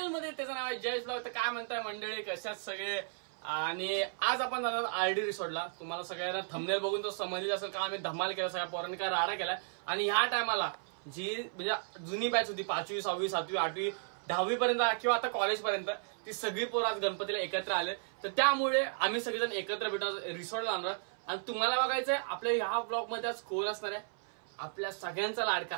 मध्ये. त्याचं नाव आहे जयेश ब्लॉग. तर काय म्हणताय मंडळी, कशात सगळे? आणि आज आपण जाणार आरडी रिसॉर्टला. तुम्हाला सगळ्यांना थंबनेल बघून तो समजली असेल का आम्ही धमाल केला, सगळ्या पोरांनी काय राडा केलाय. आणि ह्या टायमाला जी म्हणजे जुनी बॅच होती 5वी 6वी 7वी 8वी 10वी पर्यंत किंवा आता कॉलेज पर्यंत, ती सगळी पोरं आज गणपतीला एकत्र आले. तर त्यामुळे आम्ही सगळेजण एकत्र भेटून रिसॉर्टला जाणार. आणि तुम्हाला बघायचंय आपल्या ह्या ब्लॉग मध्ये आज कोण असणार आहे, आपल्या सगळ्यांचा लाडका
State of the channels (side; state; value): left; silent; 55 dB below the other